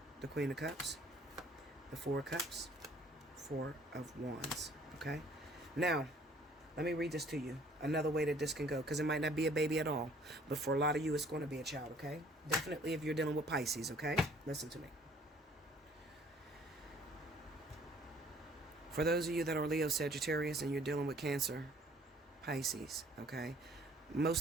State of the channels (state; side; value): normal; both; correlation 0.57